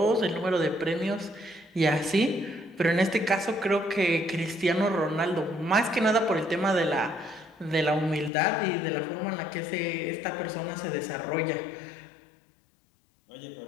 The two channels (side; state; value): right; drops out; at 8.3 s